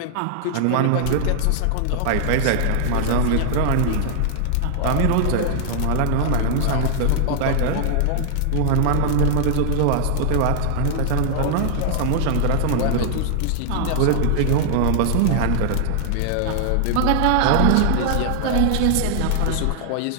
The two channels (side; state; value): both; different; correlation 0.00